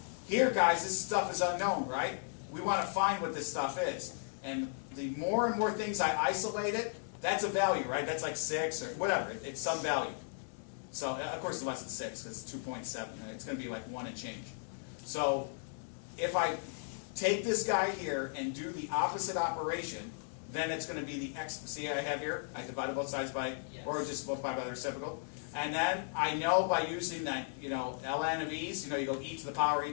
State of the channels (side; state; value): right; silent; digital silence